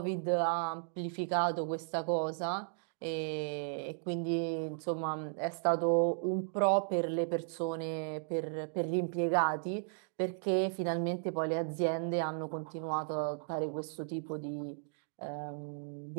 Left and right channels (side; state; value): left; silent; digital silence